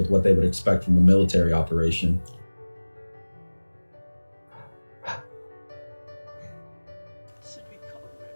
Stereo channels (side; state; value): both; inverted; correlation -1.00